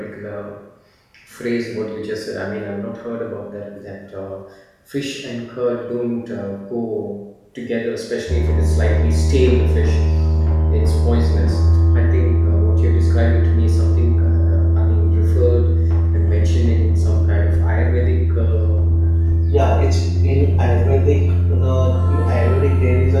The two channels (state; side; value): identical; both; correlation 1.00